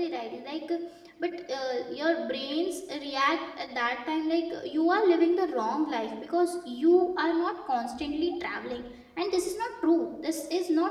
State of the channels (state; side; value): identical; both; correlation 1.00